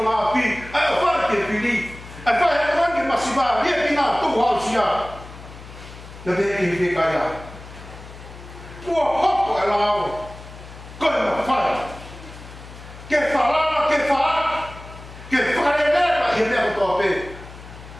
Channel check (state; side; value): noise; left; hum, 16 dB below the sound